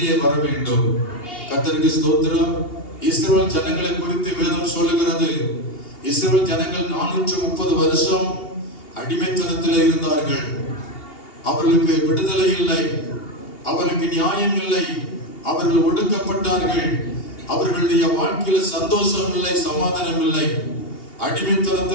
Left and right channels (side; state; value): right; late; 2.8 ms